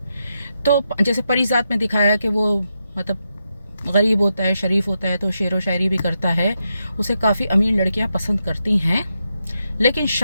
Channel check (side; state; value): both; inverted; correlation -0.85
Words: तो जैसे परिजात में दिखाया कि वो मतलब गरीब होता है, शरीफ होता है, तो शेरो शायरी भी करता है, उसे काफ़ी अमीर लड़कियां पसंद करती हैं। लेकिन